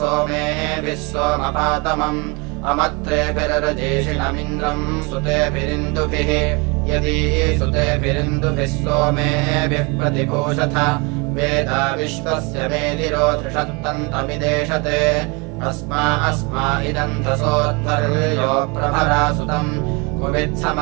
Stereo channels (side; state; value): left; quieter; 29.5 dB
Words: सोमपातमम् अमत्रेभिरजेषिणमिन्द्रम् सुतेभिरिन्दुभिः यदि सुतेभिरिन्दुभिः सोमेभिः प्रतिभूषथ वेदा विश्वस्य मेदिरो धृषत्तन्तमिदेशते अस्मा इदन्धसोऽध्वर्यो प्रभरा सुतम्